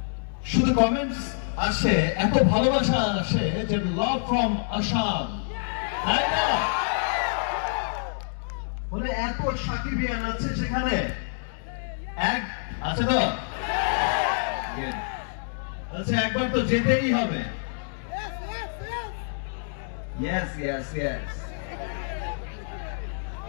শুধু কমেন্টস আসে, এত ভালোবাসা আসে যে লাভ ফ্রম আসাম, তাই না? বলে এত সাকিবিয়ান আছে সেখানে, এক আছে তো, আচ্ছা একবার তো যেতেই হবে। ইয়েস ইয়েস ইয়েস,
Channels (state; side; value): silent; right; digital silence